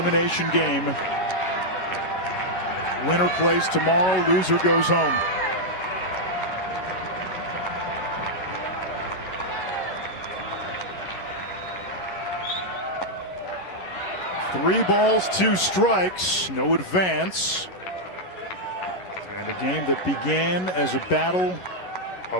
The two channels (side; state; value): right; late; 11 ms